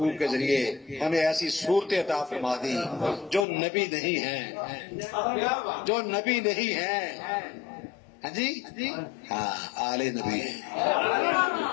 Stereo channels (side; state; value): right; drops out; at 3.5 s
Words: کے ذریعے ہمیں ایسی صورتیں عطا فرما دی جو نبی نہیں ہیں، جو نبی نہیں ہیں۔ ہاں جی، ہاں آل نبی ہیں،